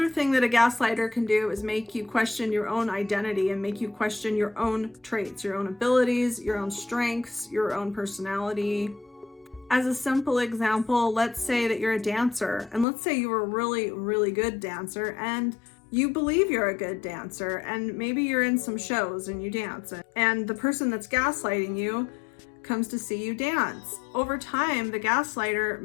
thing that a gaslighter can do is make you question your own identity and make you question your own traits, your own abilities, your own strengths, your own personality. As a simple example, let's say that you're a dancer, and let's say you're a really, really good dancer, and you believe you're a good dancer, and maybe you're in some shows and you dance, and the person that's gaslighting you comes to see you dance. Over time, the gaslighter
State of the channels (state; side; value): drops out; right; at 12.9 s